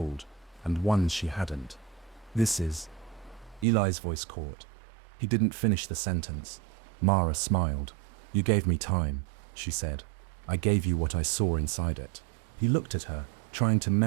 and ones she hadn't. "This is..." Eli's voice caught. He didn't finish the sentence. Mara smiled. "You gave me time," she said. "I gave you what I saw inside it." He looked at her, trying to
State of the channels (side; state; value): left; drops out; at 3.7 s